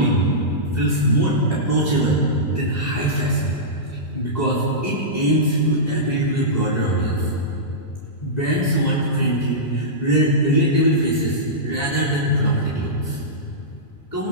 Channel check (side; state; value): right; late; 2.4 ms